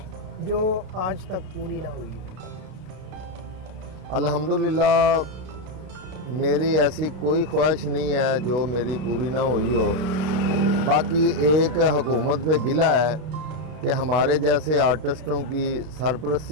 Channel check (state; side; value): late; left; 32 ms